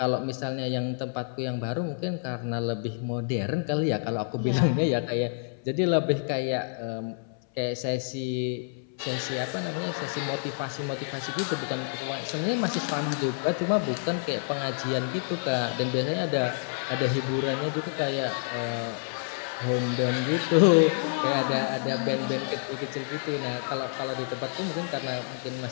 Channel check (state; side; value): silent; right; 58 dB below the other